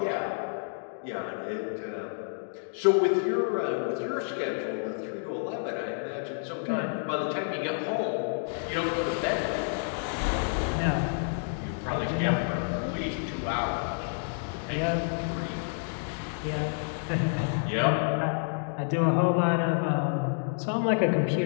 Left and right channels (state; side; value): silent; right; digital silence